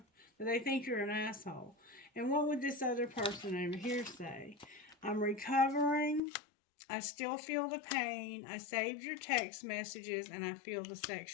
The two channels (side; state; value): right; drops out; at 6.2 s